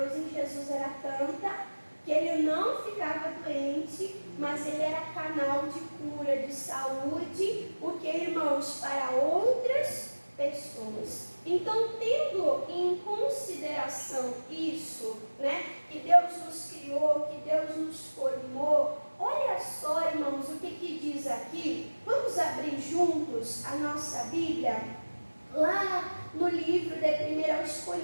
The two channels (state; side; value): inverted; both; correlation -1.00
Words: em Jesus era tanta que ele não ficava doente, mas ele era canal de cura, de saúde, porque, irmãos, para outras pessoas. Então, tendo em consideração isso, que Deus nos criou, que Deus nos formou, olha só, irmãos, o que diz aqui. Vamos abrir juntos a nossa Bíblia, lá no livro de 1 aos